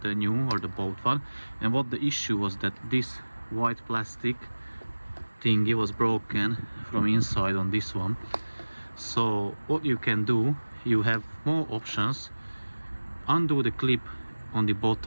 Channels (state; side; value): inverted; both; correlation -1.00